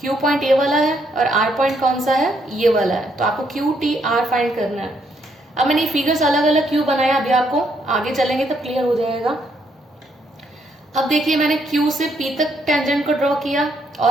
Q पॉइंट ये वाला है, और R पॉइंट कौन सा है, ये वाला है, तो आपको QTR फाइंड करना है। अब मैंने ये फिगर्स अलग अलग क्यों बनाया, अभी आपको आगे चलेंगे तब क्लियर हो जाएगा। अब देखिए मैंने Q से P तक टेंजेंट को ड्रॉ किया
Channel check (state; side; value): normal; both; correlation 0.73